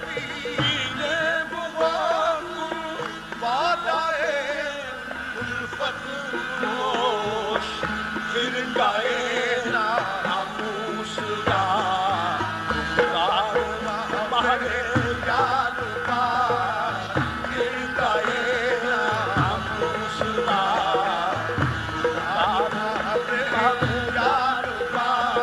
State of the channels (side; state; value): both; identical; correlation 1.00